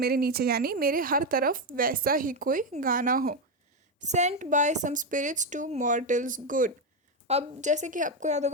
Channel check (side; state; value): both; normal; correlation 0.09